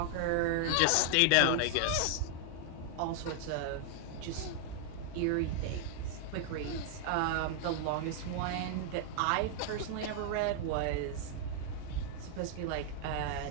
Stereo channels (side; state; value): both; different; correlation 0.00